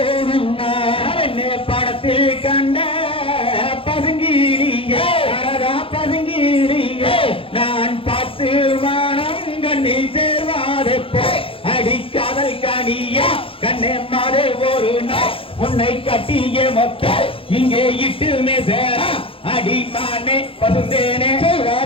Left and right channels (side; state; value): right; late; 0.26 ms